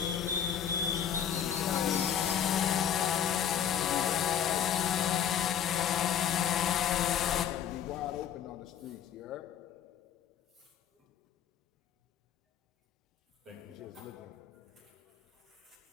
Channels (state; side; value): quieter; right; 9.1 dB